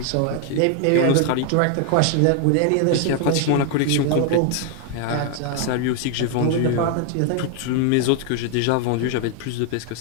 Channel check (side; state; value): both; different; correlation 0.00